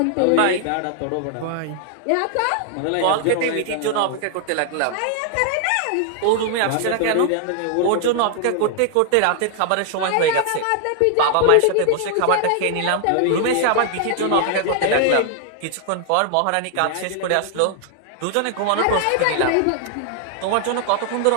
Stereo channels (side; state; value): both; different; correlation 0.00